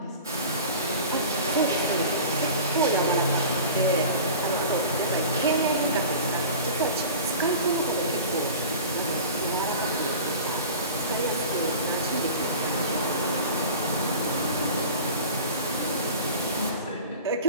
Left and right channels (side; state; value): both; inverted; correlation -0.37